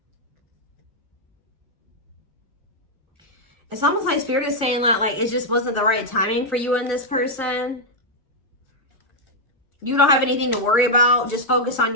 It's almost like Spirit is saying that like it just wasn't the right timing for you and this person. You don't have anything to worry about. Just focus on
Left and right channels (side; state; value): both; normal; correlation -0.02